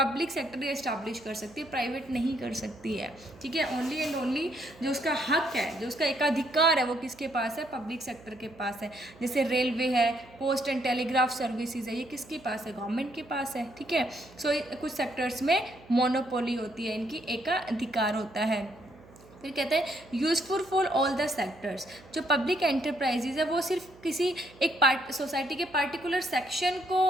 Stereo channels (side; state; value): right; noise; hum, 23 dB below the sound